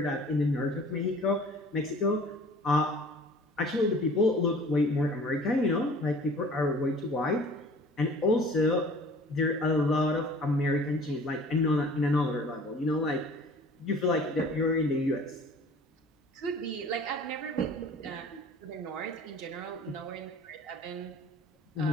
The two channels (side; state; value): both; normal; correlation 0.47